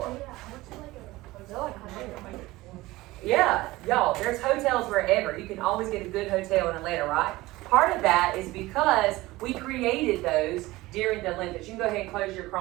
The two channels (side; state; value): left; quieter; 19.1 dB